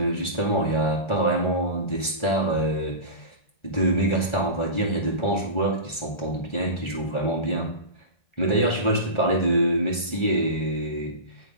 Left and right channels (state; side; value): late; right; 1.4 ms